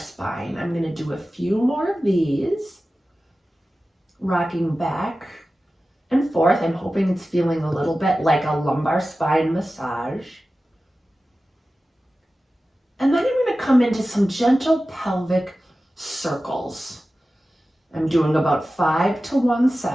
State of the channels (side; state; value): both; normal; correlation 0.95